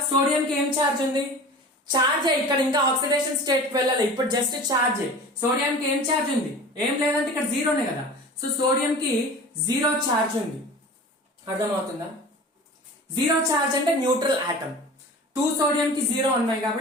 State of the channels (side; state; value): both; normal; correlation 0.38